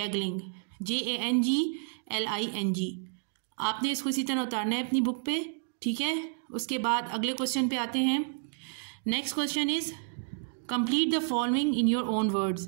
JANGLING. आपने इसको इसी तरह उतारना है अपनी बुक पे, ठीक है. उसके बाद अगले क्वेश्चन पे आते हैं. Next question is complete the following in your own words.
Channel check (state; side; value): silent; left; digital silence